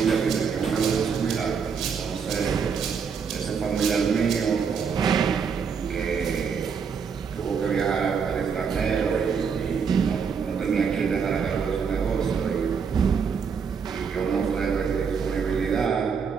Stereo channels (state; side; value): quieter; left; 6.3 dB